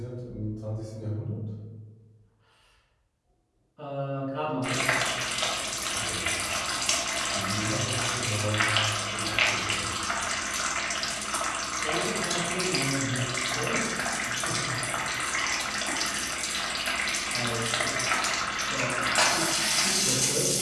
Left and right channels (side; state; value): both; identical; correlation 1.00